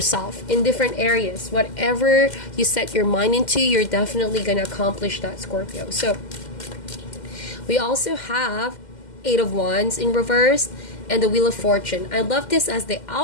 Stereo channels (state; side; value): late; right; 2.1 ms